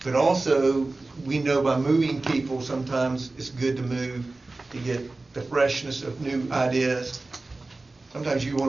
But also, we know by moving people, sometimes it's good to move to get the freshness of new ideas. Sometimes you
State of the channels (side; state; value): left; quieter; 3.3 dB